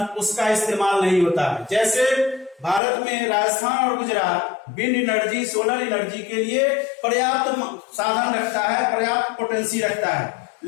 उसका इस्तेमाल नहीं होता है। जैसे भारत में राजस्थान और Gujarat wind energy, solar energy के लिए पर्याप्त साधन रखता है, पर्याप्त पोटेंसी रखता है,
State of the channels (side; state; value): right; drops out; at 2.8 s